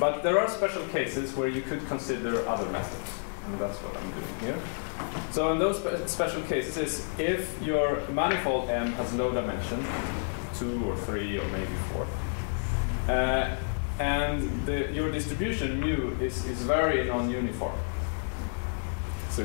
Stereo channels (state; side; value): silent; right; digital silence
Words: there are special cases where you could consider other methods, and that's what I'm doing here. So in those special cases, if your manifold M has low dimension, 2 or 3 or maybe 4, and your distribution mu is very non-uniform. So